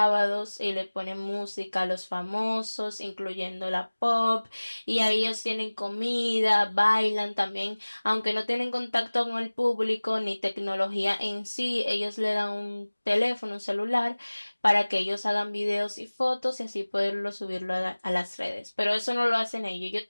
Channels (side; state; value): both; inverted; correlation -1.00